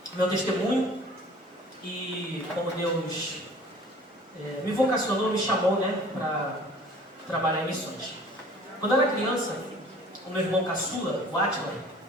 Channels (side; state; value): both; normal; correlation 0.49